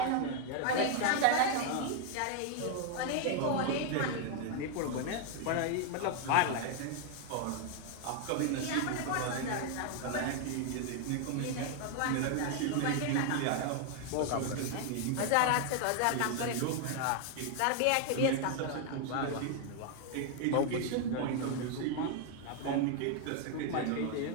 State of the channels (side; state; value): both; different; correlation 0.00